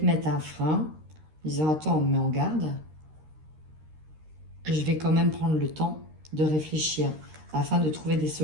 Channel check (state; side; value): late; left; 13 ms